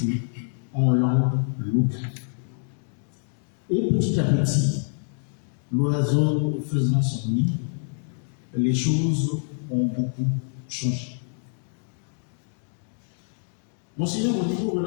en langue locale. Et petit à petit, l'oiseau faisant son nid, les choses ont beaucoup changé. Monseigneur Modibo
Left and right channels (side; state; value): right; silent; digital silence